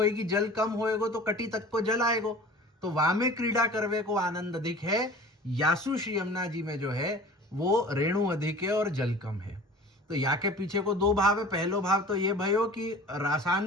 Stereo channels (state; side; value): normal; both; correlation 0.42